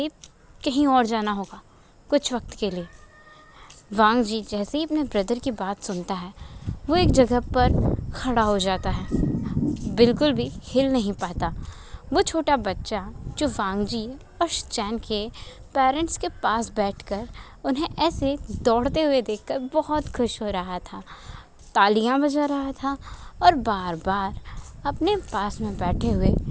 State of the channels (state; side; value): identical; both; correlation 1.00